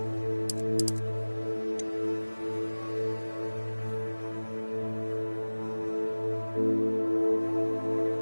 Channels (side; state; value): both; inverted; correlation -1.00